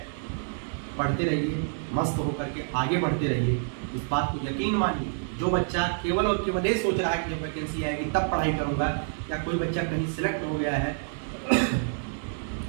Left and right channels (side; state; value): left; silent; digital silence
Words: पढ़ते रहिए, मस्त होकर के आगे बढ़ते रहिए, इस बात को यकीन मानिए। जो बच्चा केवल और केवल ये सोच रहा है कि जब वैकेंसी आएगी तब पढ़ाई करूंगा, या कोई बच्चा कहीं सिलेक्ट हो गया है